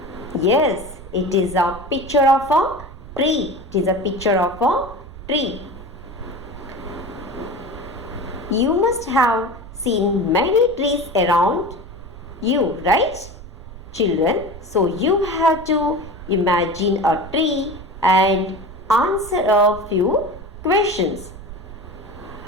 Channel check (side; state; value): right; noise; rumble, 15 dB below the sound